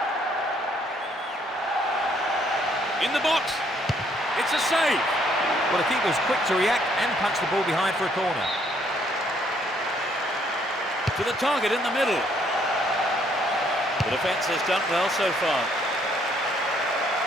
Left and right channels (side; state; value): both; normal; correlation 0.67